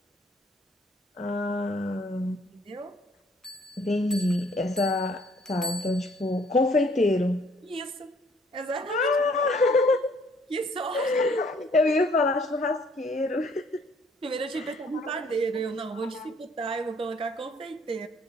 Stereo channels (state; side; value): normal; both; correlation 0.61